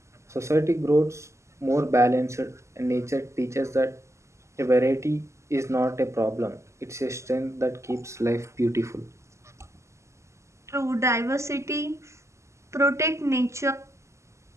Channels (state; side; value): late; left; 0.14 ms